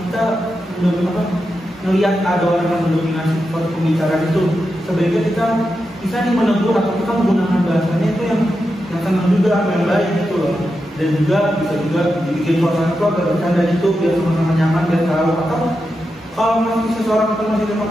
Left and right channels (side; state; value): both; normal; correlation 0.88